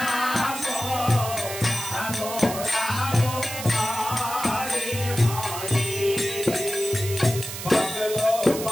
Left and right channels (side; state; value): right; noise; hiss, 8 dB below the sound